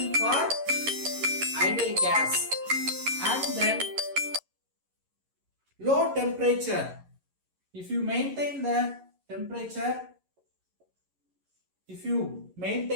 for ideal gas. And then low temperature. If you maintain the temperature, if you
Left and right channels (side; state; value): left; late; 11 ms